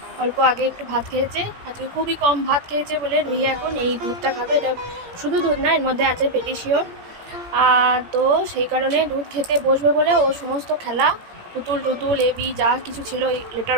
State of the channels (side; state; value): left; late; 17 ms